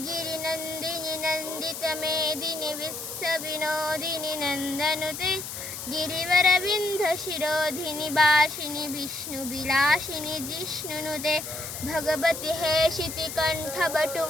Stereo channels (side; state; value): left; noise; hiss, 8 dB below the sound